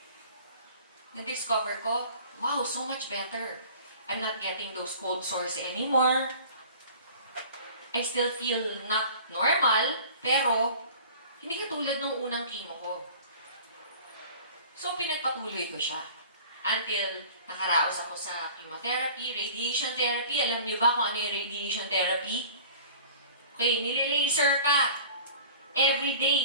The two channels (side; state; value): both; inverted; correlation -0.44